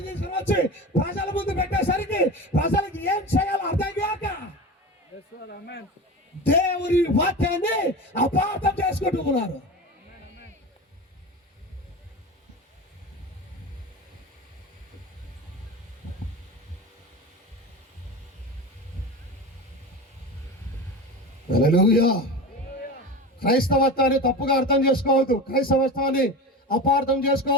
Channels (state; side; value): normal; both; correlation 0.28